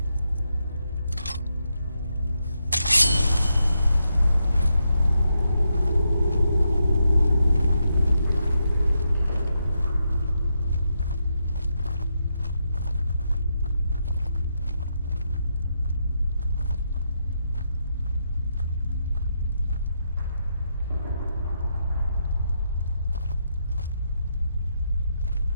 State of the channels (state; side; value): inverted; both; correlation -0.82